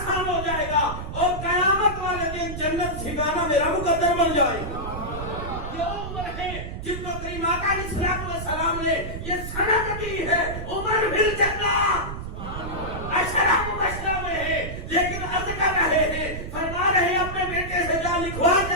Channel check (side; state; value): right; noise; rumble, 7 dB below the sound